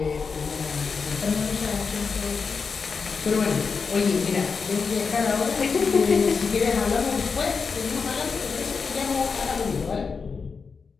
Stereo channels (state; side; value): quieter; right; 5.2 dB